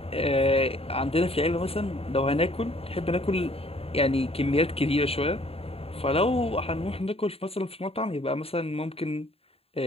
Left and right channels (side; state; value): right; late; 0.28 ms